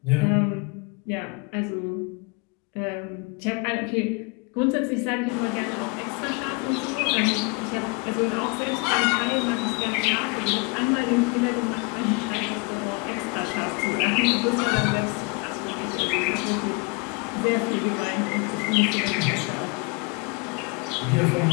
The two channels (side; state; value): right; quieter; 31.2 dB